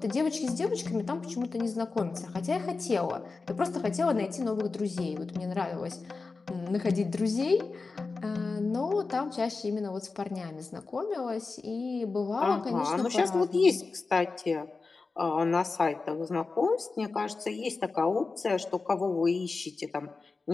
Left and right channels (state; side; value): quieter; right; 4.1 dB